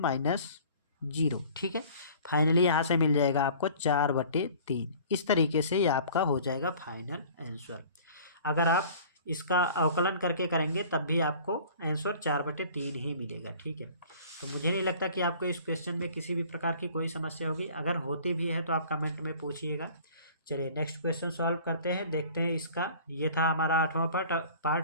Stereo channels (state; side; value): inverted; both; correlation -0.47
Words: 0। ठीक है, फाइनली यहाँ से मिल जाएगा आपको 4 बटे 3। इस तरीके से ये आपका हो जाएगा फाइनल आंसर। अगर आप इसका अवकलन करके करेंगे तब भी आपको आंसर 4/3 ही मिलेगा। ठीक है, तो मुझे नहीं लगता कि आपको इस क्वेश्चन में किसी भी प्रकार की कोई समस्या होगी। अगर होती भी है तो आप कमेंट में पूछिएगा। चलिए नेक्स्ट क्वेश्चन सॉल्व करते हैं, देखते हैं इसका। ये था हमारा 8वां